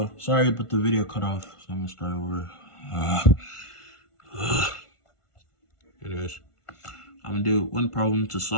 sorry, but the video cut off. So I'm gonna start over. Anyways, I'm gonna do one problem to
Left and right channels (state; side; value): late; right; 1.5 ms